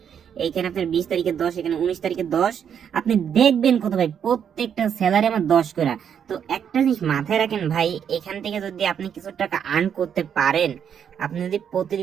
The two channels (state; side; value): quieter; left; 8.2 dB